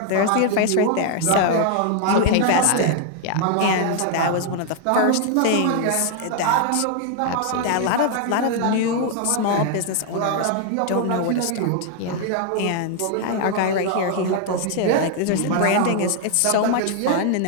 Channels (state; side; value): different; both; correlation 0.00